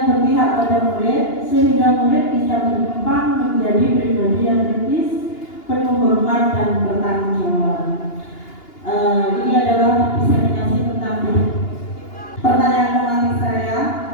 berpihak pada murid sehingga murid bisa berkembang menjadi pribadi yang kritis, penuh hormat dan bertanggung jawab. Ini adalah diseminasi tentang pertanyaan tematik saya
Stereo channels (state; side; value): late; right; 2.8 ms